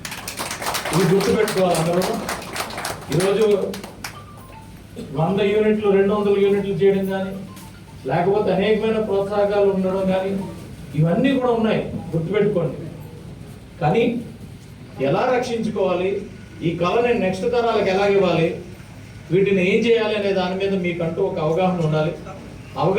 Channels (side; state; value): both; identical; correlation 1.00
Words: ఇది గుర్తుపెట్టుకోవాలి అందరూ. ఈరోజు 100 యూనిట్లు 200 యూనిట్లు చేయడం కానీ, లేకపోతే అనేకమైన ప్రోత్సాహకాలు ఉండడం కానీ ఇవన్నీ కూడా ఉన్నాయి, గుర్తుపెట్టుకోండి. కానీ ఎలా రక్షించుకోవాలి, ఈ కళని నెక్స్ట్ తరాలకు ఎలా ఇవ్వాలి, వీటిని ఏం చేయాలి అనే దాని మీద మీకంటూ ఒక అవగాహన ఉండాలి.